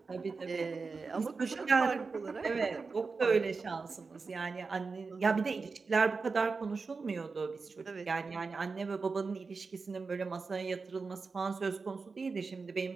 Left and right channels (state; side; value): quieter; left; 4.5 dB